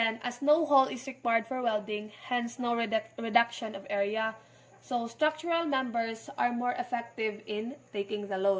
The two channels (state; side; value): identical; both; correlation 1.00